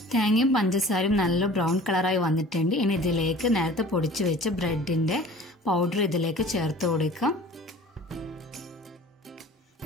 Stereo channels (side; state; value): both; normal; correlation 0.44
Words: തേങ്ങയും പഞ്ചസാരയും നല്ല ബ്രൗൺ കളറായി വന്നിട്ടുണ്ട്. ഇനി ഇതിലേക്ക് നേരത്തെ പൊടിച്ചു വെച്ച ബ്രെഡിൻ്റെ പൗഡർ ഇതിലേക്ക് ചേർത്ത് കൊടുക്കാം.